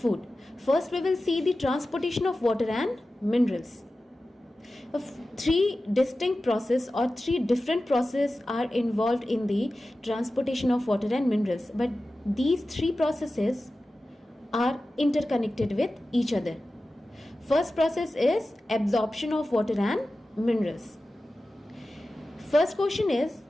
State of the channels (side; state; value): both; normal; correlation 0.94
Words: First we will see the transportation of water and minerals. Three distinct processes or three different processes are involved in the transportation of water and minerals, but these three processes are interconnected with each other. First process is absorption of water and minerals. First question is,